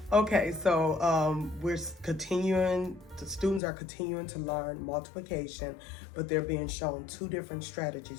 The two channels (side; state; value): right; drops out; at 3.6 s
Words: Okay, so we're continuing, the students are continuing to learn multiplication, but they're being shown two different